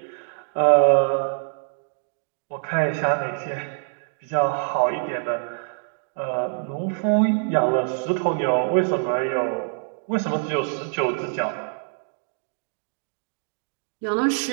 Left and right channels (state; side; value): silent; left; digital silence